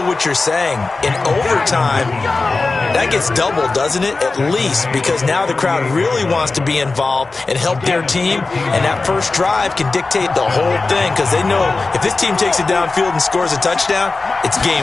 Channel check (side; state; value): right; quieter; 3.7 dB